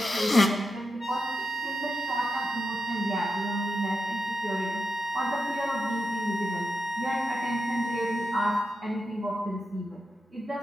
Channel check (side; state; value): both; normal; correlation 0.87